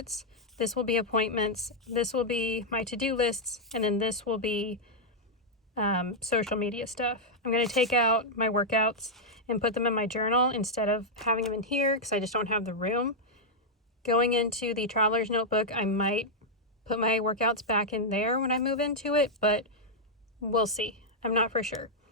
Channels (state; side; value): normal; both; correlation -0.04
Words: This will be appointments. This will be my to-do lists. And then this will be social media stuff. I'm going to take out my workouts and put them in my journal instead of having them in here because I just don't have the room. Going into the traveler's notebook, I might put my workouts back in there when I move into it, but we'll see. I'm not for sure.